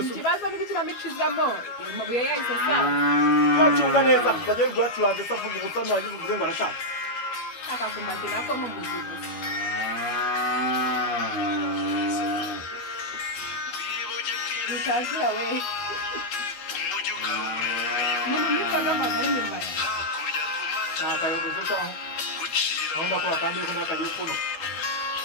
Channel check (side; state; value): right; late; 12 ms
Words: ikibazo ni ikinamico izamo amabuye yahise asanga yacunga neza bagiye guyacuranze se avuga ubusa ntiwagize uvuze ngo arashaka akakumbati nako ni umuzi gusa nutazira we umuntu witwaga amagara imbere ntakayogoze cyangwa aho ndakora kandi yuko ndakagiye kuno